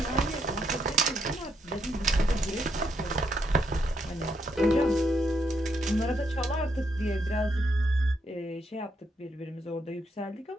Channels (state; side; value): normal; both; correlation 0.77